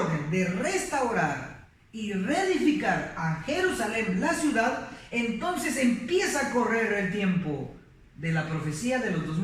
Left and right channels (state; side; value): identical; both; correlation 1.00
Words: de restaurar y reedificar a Jerusalén, la ciudad, entonces empieza a correr el tiempo de la profecía de los